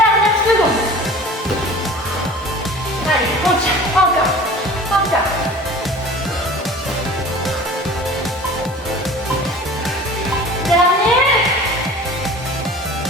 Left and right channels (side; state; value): both; normal; correlation 0.42